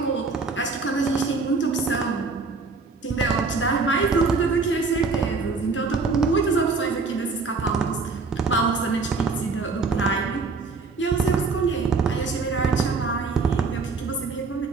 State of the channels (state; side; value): quieter; left; 4.3 dB